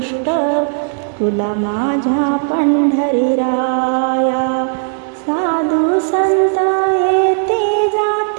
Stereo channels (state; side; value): silent; left; digital silence